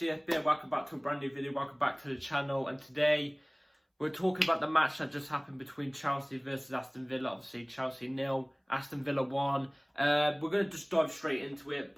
CFB, welcome back to a brand new video, welcome back to the channel, and today we're talking about the match that just happened between Chelsea versus Aston Villa. Obviously Chelsea 0, Aston Villa 1. We're going to just dive straight into it,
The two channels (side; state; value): both; identical; correlation 1.00